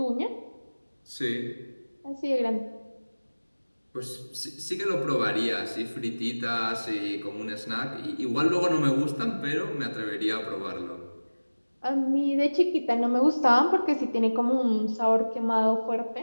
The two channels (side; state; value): both; inverted; correlation -1.00